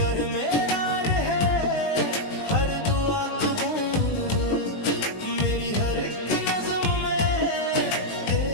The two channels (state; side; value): late; right; 19 ms